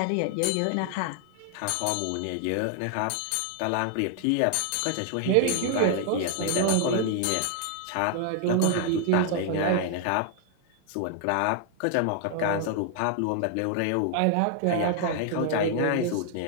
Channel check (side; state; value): both; different; correlation 0.00